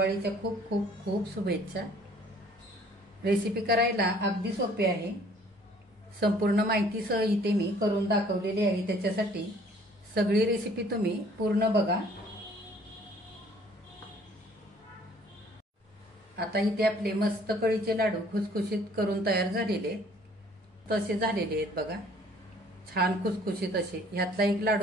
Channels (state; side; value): normal; both; correlation 0.57